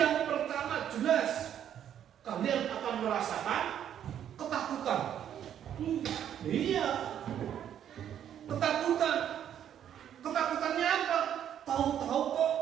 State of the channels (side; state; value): left; quieter; 9.9 dB